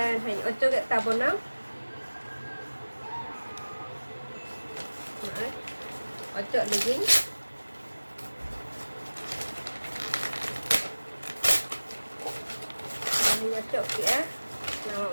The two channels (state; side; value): inverted; both; correlation -1.00